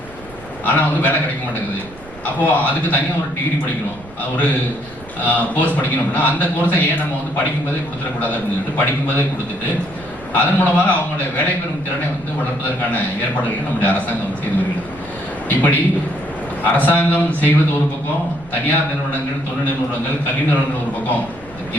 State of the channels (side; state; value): right; noise; rumble, 20 dB below the sound